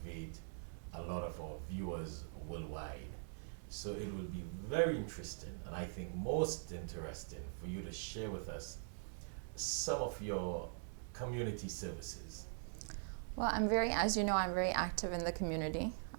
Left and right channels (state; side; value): silent; left; digital silence